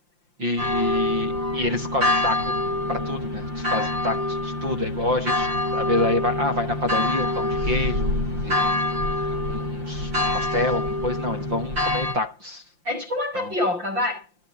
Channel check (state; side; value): late; left; 5.7 ms